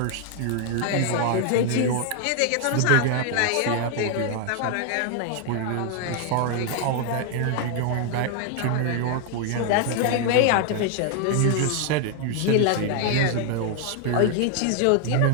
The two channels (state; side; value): different; both; correlation 0.00